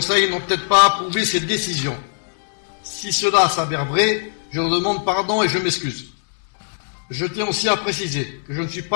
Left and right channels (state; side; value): silent; right; digital silence